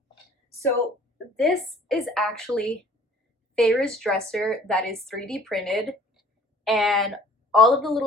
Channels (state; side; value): normal; both; correlation 0.52